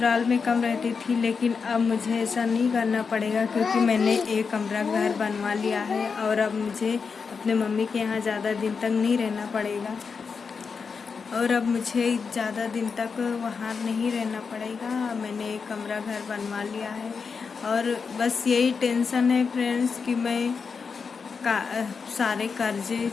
में कम रहती थी, लेकिन अब मुझे ऐसा नहीं करना पड़ेगा, क्योंकि मैंने एक कमरा घर बनवा लिया है, और अब मुझे अपने मम्मी के यहाँ ज़्यादा दिन तक नहीं रहना पड़ेगा, और अब मुझे ज़्यादा दिन तक वहाँ नहीं रहना पड़ेगा। मैंने एक कमरा घर बनवा लिया है, और बस यही टेंशन है फ्रेंड्स कि मैं सारे कर्जे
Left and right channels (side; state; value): right; quieter; 5.4 dB